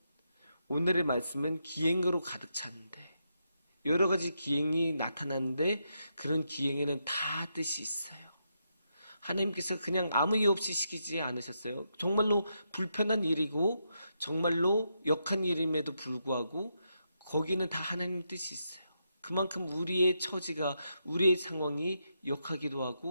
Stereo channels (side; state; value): both; inverted; correlation -0.82